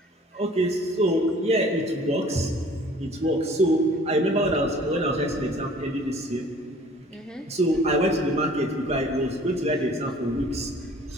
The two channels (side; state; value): both; normal; correlation 0.51